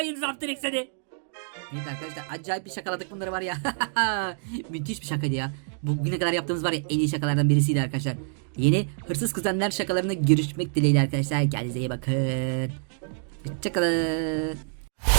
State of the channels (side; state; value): left; silent; 56 dB below the other